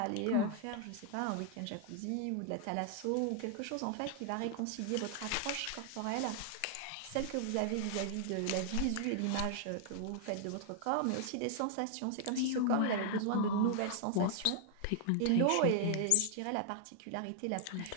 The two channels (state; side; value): different; both; correlation 0.00